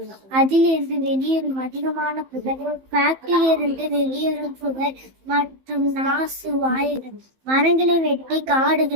அதிலிருந்து வெளியேறும் அதிகமான புகை, ஃபேக்டரியிலிருந்து வெளியேறும் புகை மற்றும் நாசு வாயுகள், மரங்களை வெட்டி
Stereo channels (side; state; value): left; late; 15 ms